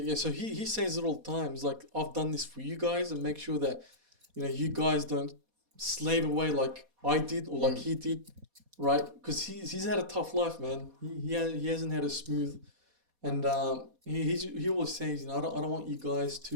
So he says it all the time. He's like, I've done this for you guys and make sure that, you know, you guys don't slave away like I did or like he did, right? Because he's had a tough life, man. He hasn't had a smooth. And he always says, you know, I don't want you guys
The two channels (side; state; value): left; late; 4.2 ms